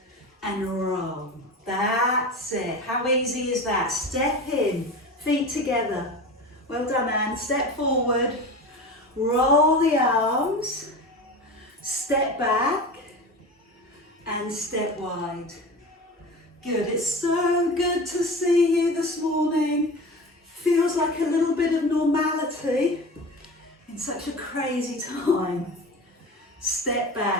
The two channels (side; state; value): both; normal; correlation 0.31